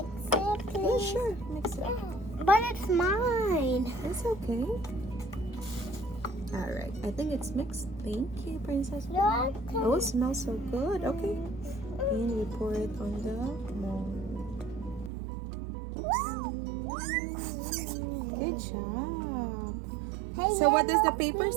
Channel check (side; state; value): left; drops out; at 15.1 s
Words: Yeah, please? sure. Mix it. But it's mine. It's okay. All right. I think it's mixed. Thank you, Princess. Look. Oh, it smells so good. Okay. And we pour it on the mold. Good job. Hey, So what does the paper